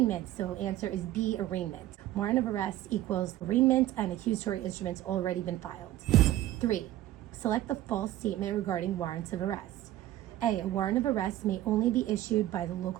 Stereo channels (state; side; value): quieter; left; 14.3 dB